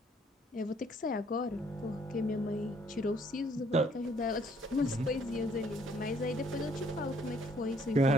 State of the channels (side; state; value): both; normal; correlation 0.64